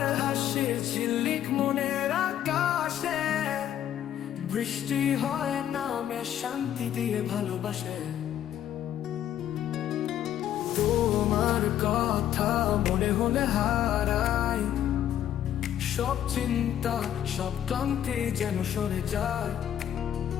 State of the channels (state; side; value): quieter; right; 10.9 dB